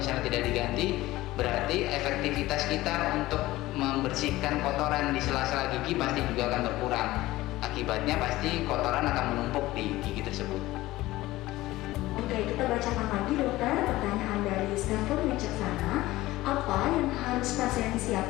tidak diganti, berarti efektivitas kita untuk membersihkan kotoran di sela-sela gigi pasti juga akan berkurang. Akibatnya pasti kotoran akan menumpuk di gigi tersebut. Oke, kita bacakan lagi dokter pertanyaan dari Stanford Wicaksana. Apa yang harus pasien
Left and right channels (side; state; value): right; quieter; 17.5 dB